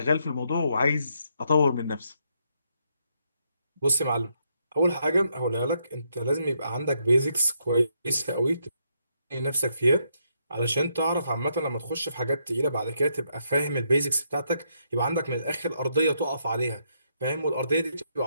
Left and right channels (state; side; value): inverted; both; correlation -0.76